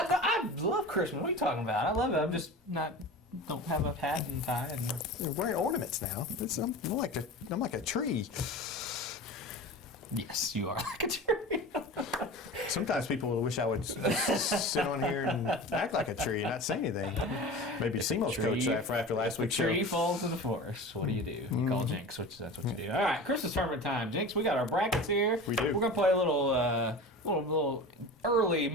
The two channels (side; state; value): both; normal; correlation 0.33